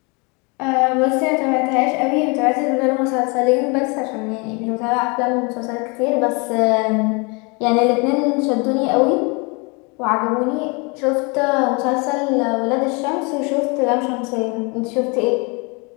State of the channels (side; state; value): right; quieter; 30.4 dB